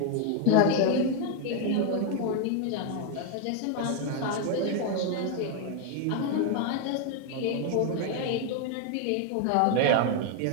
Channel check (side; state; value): both; different; correlation 0.01